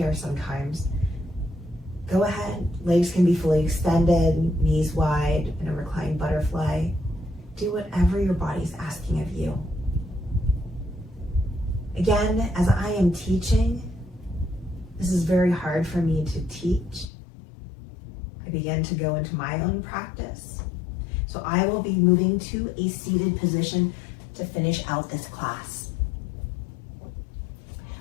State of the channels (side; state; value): right; drops out; at 17.1 s